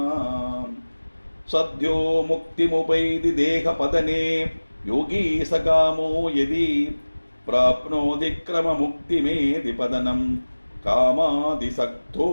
சத்யோ முக்திமுபைதி தேகபதனே யோகி சகாமோ யதி பிராப்னோதி கிரமமுக்திமேதி பதனம் காமாதிசக்தோ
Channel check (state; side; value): inverted; both; correlation -1.00